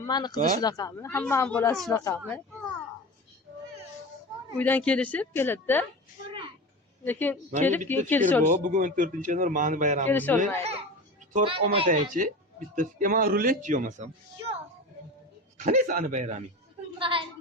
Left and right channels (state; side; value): normal; both; correlation 0.30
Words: qizi shunaqami? Hammani bolasi shunaqami? Uydan kelishib keladi-da. Lekin kelib keyin kelisha olmaydi. Bugun 14-yanvar mani bayramimiz. Kelisha olmaydi. Tort olmasangchi, bitta fikr. Men ruletchi olmasam. Yo'q. Qanday sani bayraming?